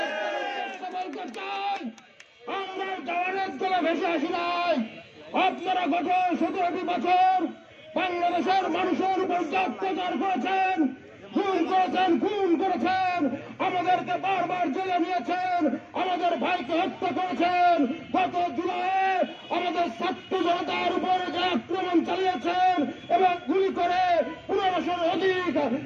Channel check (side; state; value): both; identical; correlation 1.00